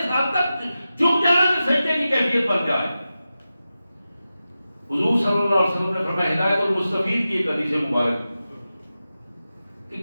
حد تک جھک جانا کہ سجدے کی کیفیت بن جائے۔ حضور صلی اللہ علیہ وسلم نے فرمایا، ہدایت المستفید کی ایک حدیث مبارک، کہ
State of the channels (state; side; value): inverted; both; correlation -0.93